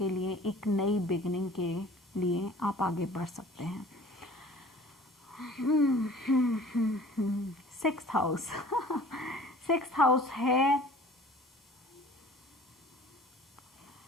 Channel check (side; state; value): both; normal; correlation 0.48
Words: लिए एक नई बिगनिंग के लिए आप आगे बढ़ सकते हैं। 6th हाउस 6th हाउस है